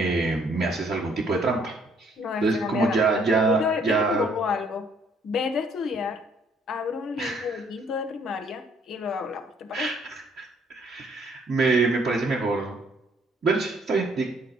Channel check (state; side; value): normal; both; correlation 0.64